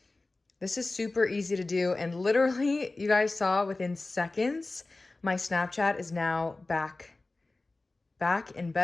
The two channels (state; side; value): quieter; right; 3.2 dB